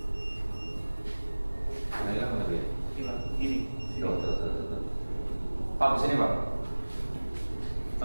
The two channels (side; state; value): both; inverted; correlation -1.00